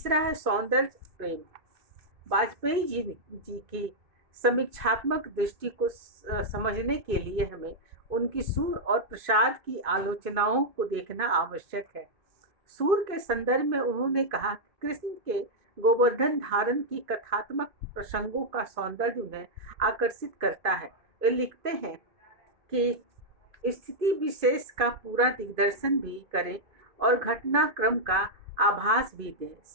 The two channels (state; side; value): late; left; 2.5 ms